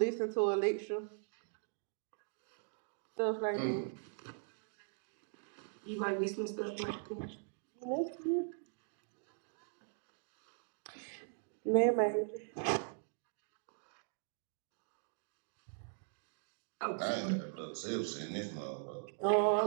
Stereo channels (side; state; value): left; silent; digital silence